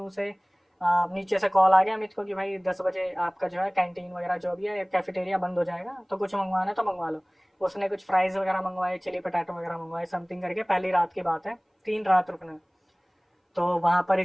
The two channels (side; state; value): both; identical; correlation 1.00